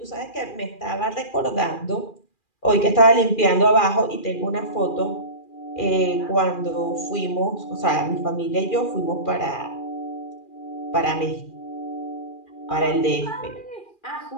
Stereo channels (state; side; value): late; right; 2.4 ms